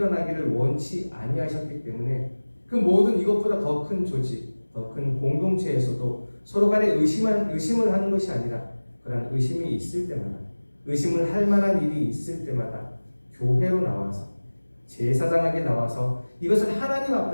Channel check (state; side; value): inverted; both; correlation -1.00